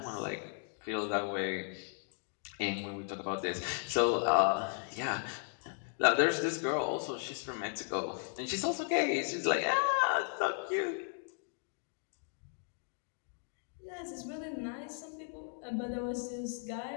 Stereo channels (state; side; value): silent; right; 54 dB below the other